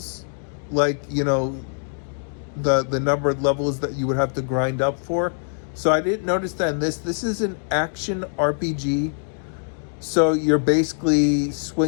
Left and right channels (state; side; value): silent; right; digital silence